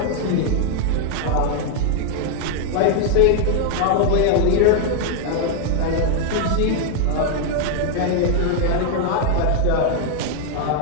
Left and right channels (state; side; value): different; both; correlation 0.00